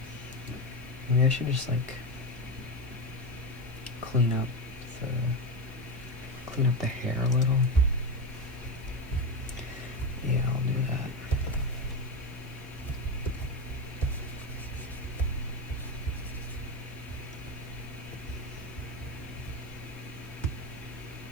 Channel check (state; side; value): noise; left; hiss, 26 dB below the sound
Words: Maybe I should just like clean up the hair a little. Yeah, I'll do that.